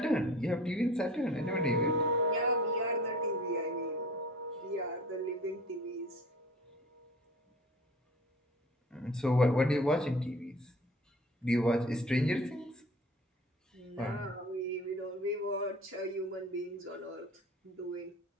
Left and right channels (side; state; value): both; normal; correlation 0.43